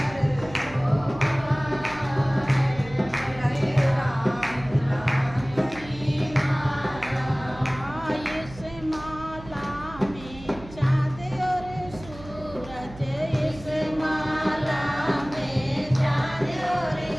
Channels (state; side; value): noise; right; hum, 16 dB below the sound